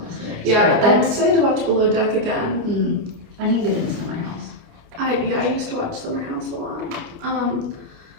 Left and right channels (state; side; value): late; left; 29 ms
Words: this list. Yeah, I'm excited to watch Below Deck again. I need to get into Summer House. I used to watch Summer House a lot.